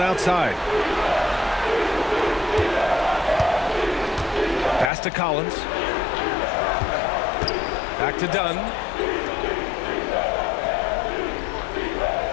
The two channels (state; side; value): drops out; right; at 4.9 s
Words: outside. Pass to Collins. Back to Dunn.